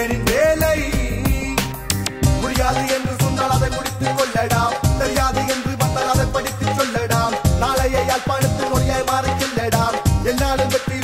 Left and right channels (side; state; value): both; identical; correlation 1.00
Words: வேலை முடியாது என்று சொன்னால் அதை முடித்துக் கொள்ளடாம் தெரியாது என்று வந்தால் அதை படித்துச் சொல்லடாம் நாளைய யாழ்ப்பாணத்தில் மொழியாய் மாறிச் செல்லடாம் என்னாலும் வெற்றி